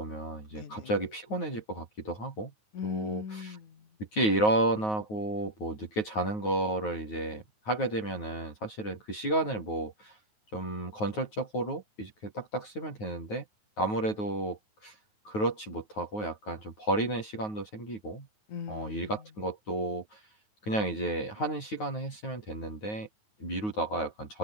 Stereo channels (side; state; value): right; late; 9.4 ms